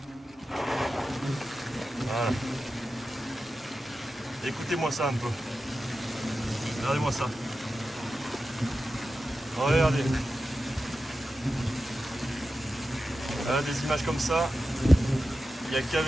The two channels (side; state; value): both; normal; correlation 0.92